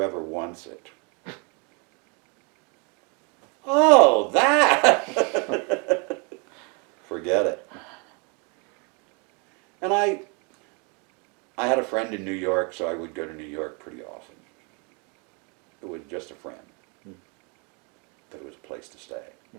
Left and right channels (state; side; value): quieter; left; 33.5 dB